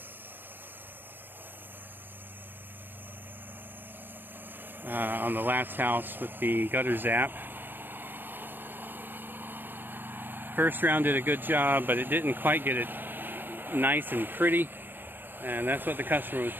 On the last house with the gutter zap. First round did a good job, but it didn't quite get it nice and pretty. And that's what the customer was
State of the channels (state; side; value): late; left; 0.095 ms